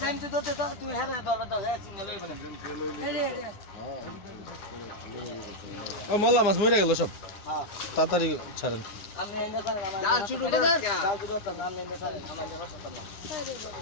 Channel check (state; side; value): late; right; 9.7 ms